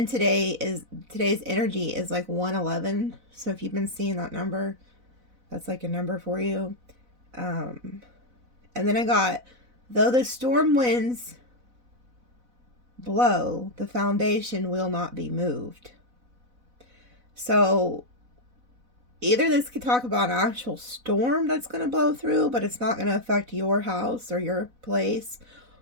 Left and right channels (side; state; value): left; late; 4.0 ms